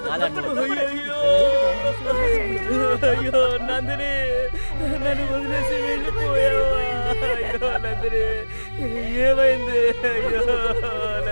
అయ్యో నందిని, నన్ను వదిలేసి వెళ్ళిపోయావా? అయ్యో నందిని, ఏమైంది? అయ్యో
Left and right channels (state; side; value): inverted; both; correlation -1.00